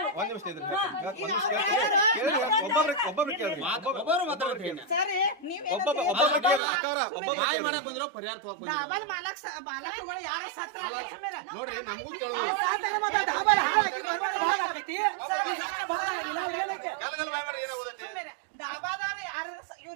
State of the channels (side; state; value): left; drops out; at 6.6 s